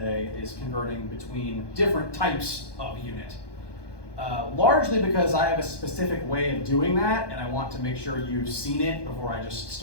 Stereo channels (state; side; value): late; right; 1.2 ms